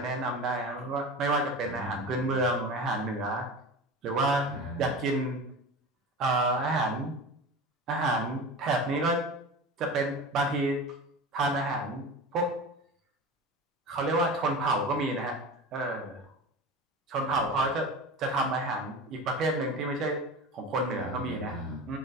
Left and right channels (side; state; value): both; normal; correlation 0.31